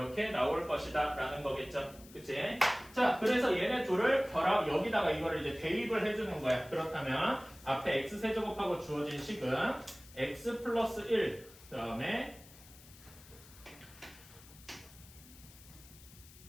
나올 것이다 라는 거겠죠. 그치? 자, 그래서 얘네 둘을 결합, 여기다가 이거를 이제 대입을 해주는 거야. 그렇다면 앞에 x세제곱하고 주어진 식은 x 플러스 1 그다음에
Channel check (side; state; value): left; noise; hiss, 21 dB below the sound